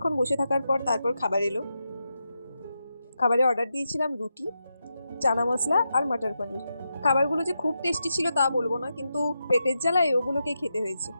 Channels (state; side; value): inverted; both; correlation -0.87